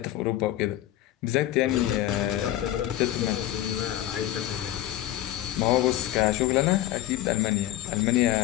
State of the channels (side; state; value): right; quieter; 13.6 dB